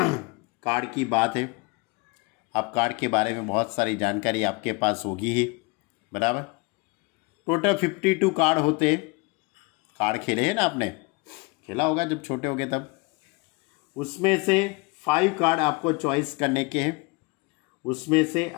Card की बात है। अब कार्ड के बारे में बहुत सारी जानकारी आपके पास होगी ही, बराबर। टोटल 52 कार्ड होते हैं। कार्ड खेले हैं ना, आपने खेला होगा जब छोटे होगे तब। उसमें से 5 कार्ड आपको चॉइस करने के हैं।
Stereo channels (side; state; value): right; quieter; 26.8 dB